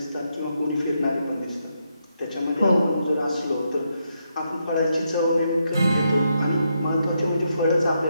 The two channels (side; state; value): both; inverted; correlation -0.80